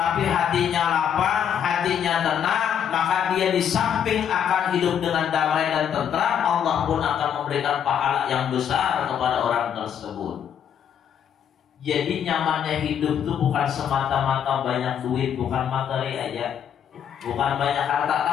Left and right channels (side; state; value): right; quieter; 8.6 dB